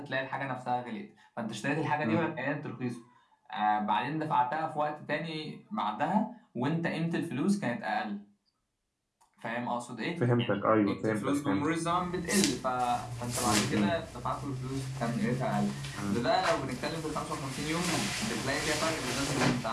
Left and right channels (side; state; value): both; identical; correlation 1.00